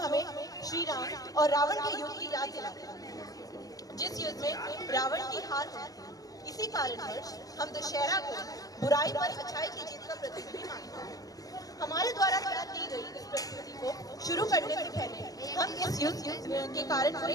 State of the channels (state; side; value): late; right; 0.17 ms